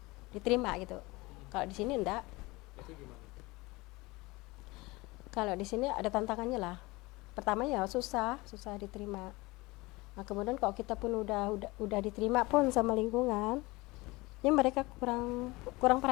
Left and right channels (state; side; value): quieter; right; 22.5 dB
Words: diterima gitu. Kalau di sini enggak. Itu gimana? Kalau di sini ada tantangannya lah. Pertama ya susah diterima. Nah, kemudian kalau kita pun udah diterima pun sama lingkungan, ya mereka kurang